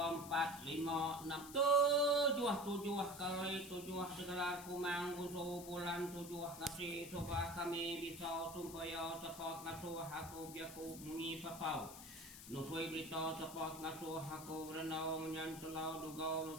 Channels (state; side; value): noise; left; hiss, 13 dB below the sound